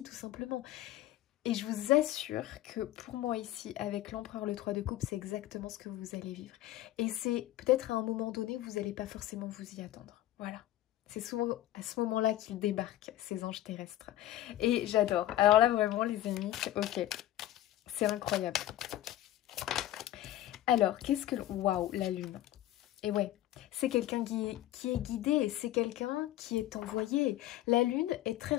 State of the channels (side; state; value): right; quieter; 14.0 dB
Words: tout simplement. Et je vous assure que pour moi ici, avec l'empereur le 3 de coupe, c'est exactement ce que vous allez vivre. Et c'est peut-être à un moment donné, vous n'allez pas forcément vous y attendre, voilà. C'est souvent à ce moment-là qu'ils débarquent, ces anges terrestres. Et j'adore. Alors là, vraiment, les amis, ok. C'est incroyable. Alors, qu'est-ce que... Waouh, la lune. Et ouais, c'est quelqu'un qui est guidé, c'est quelqu'un qui est envoyé. La lune est très